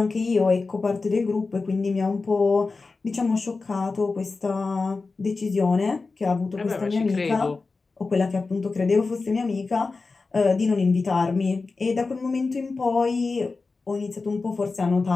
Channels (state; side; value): quieter; right; 4.0 dB